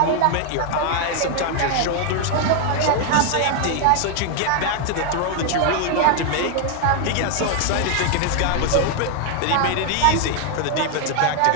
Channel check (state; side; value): different; both; correlation 0.01